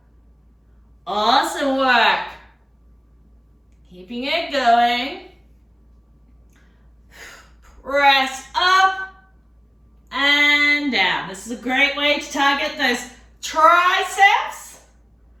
Awesome work. Keeping it going. Press up and down. This is a great way to target those triceps.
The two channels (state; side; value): identical; both; correlation 1.00